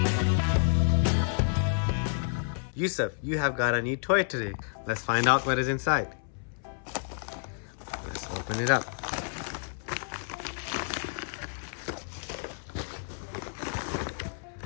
Yusuf, you have got a new toy today. Let's find out what is inside. Let's open it up.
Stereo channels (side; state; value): right; silent; 58 dB below the other